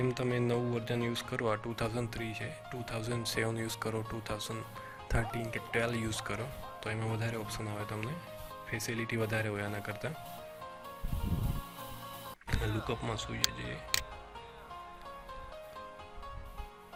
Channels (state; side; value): identical; both; correlation 1.00